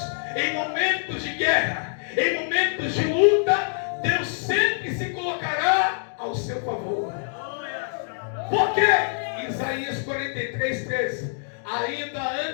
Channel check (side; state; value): right; silent; digital silence